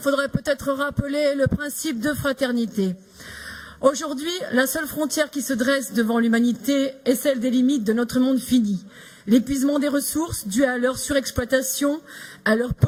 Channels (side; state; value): both; identical; correlation 1.00